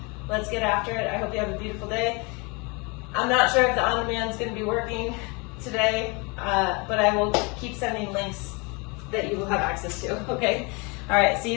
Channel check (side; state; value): right; quieter; 29.7 dB